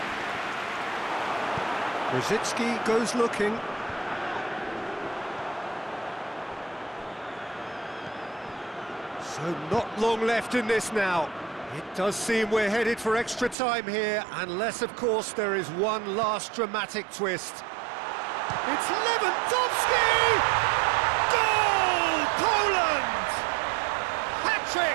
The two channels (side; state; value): left; drops out; at 13.6 s